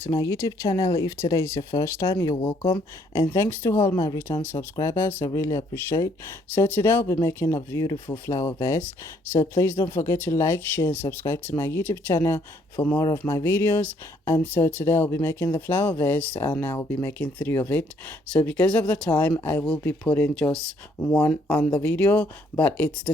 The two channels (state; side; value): normal; both; correlation 0.66